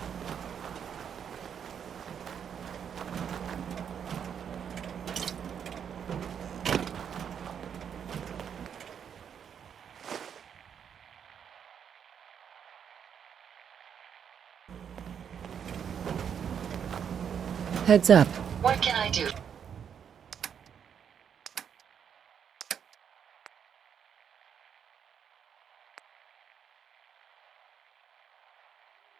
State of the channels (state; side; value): quieter; left; 7.9 dB